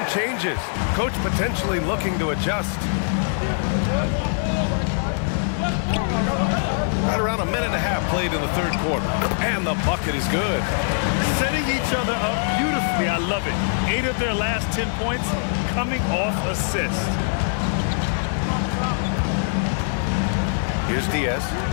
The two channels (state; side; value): silent; right; digital silence